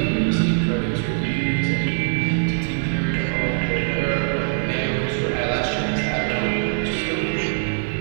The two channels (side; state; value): left; silent; 56 dB below the other